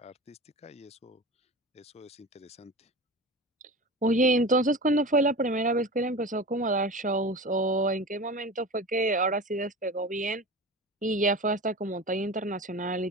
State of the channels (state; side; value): normal; both; correlation 0.31